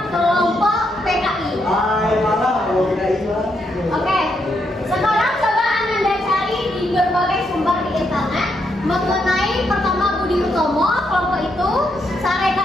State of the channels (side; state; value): both; normal; correlation 0.78